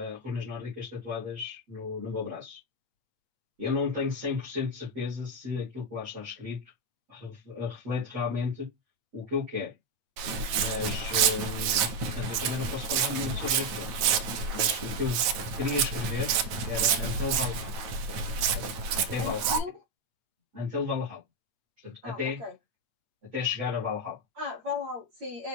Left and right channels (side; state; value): left; late; 9.2 ms